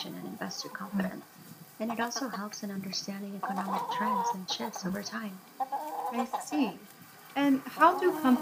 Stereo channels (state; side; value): identical; both; correlation 1.00